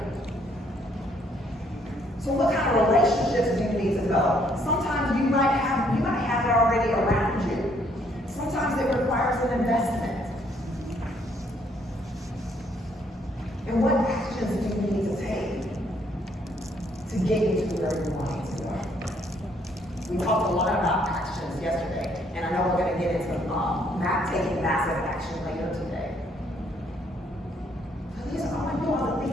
So what kind of relationships do you need to develop? Sometimes you might have it already around you. Sometimes it requires an investment. And what actions do you need to take to get you to where you want to go? We talked a lot about actions yesterday, and I know we're going to get into taking massive action later today. But these are all I want to think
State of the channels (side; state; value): both; normal; correlation 0.67